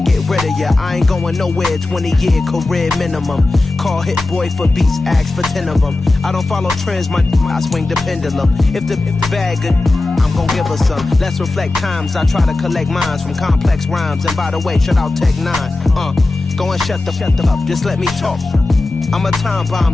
get rid of ya. I ain't going nowhere, 20-year career minimum. Call Hit Boy for beats, ask for 10 of them. I don't follow trends, I swing the pendulum. If the bag good, I'm gon' give her some. Let's reflect times, I try to collect minds from complex rhymes. And by the way, shout out Tech 9. Go and shut the up, just let me talk. I'm a time bomb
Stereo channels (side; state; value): right; quieter; 3.1 dB